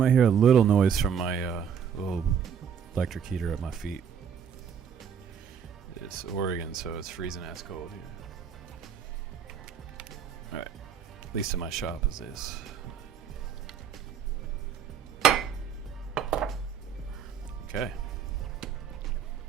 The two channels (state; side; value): quieter; left; 7.6 dB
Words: hear a little noise from my little electric heater at my feet. It's Oregon, so it's freezing ass cold here. All right. At least in my shop is this. Okay.